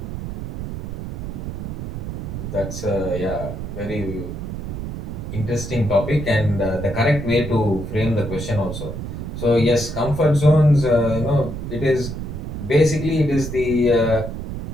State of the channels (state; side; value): noise; right; rumble, 6 dB below the sound